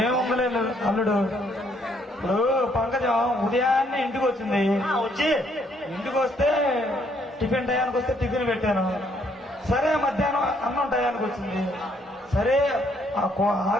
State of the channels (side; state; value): both; normal; correlation 0.69